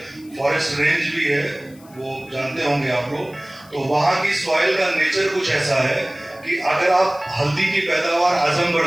फॉरेस्ट रेंज भी है, वो जानते होंगे आप लोग। तो वहाँ की सॉइल का नेचर कुछ ऐसा है कि अगर आप हल्दी की पैदावार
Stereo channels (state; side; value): noise; left; hiss, 26 dB below the sound